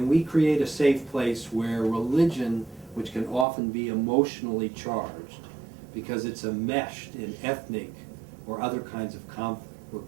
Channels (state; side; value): drops out; left; at 3.5 s